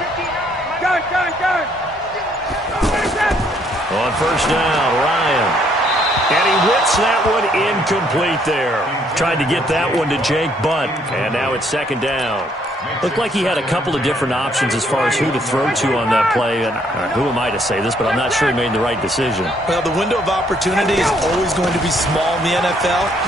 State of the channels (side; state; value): both; normal; correlation 0.68